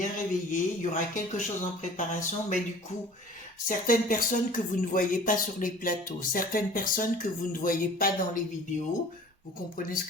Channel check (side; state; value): both; normal; correlation 0.45